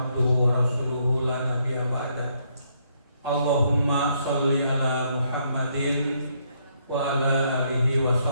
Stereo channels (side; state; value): both; inverted; correlation -0.72